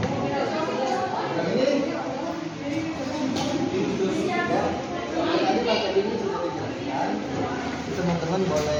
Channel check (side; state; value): both; identical; correlation 1.00